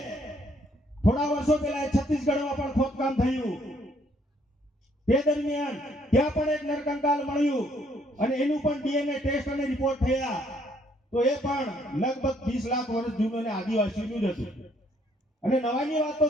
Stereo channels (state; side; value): normal; both; correlation 0.67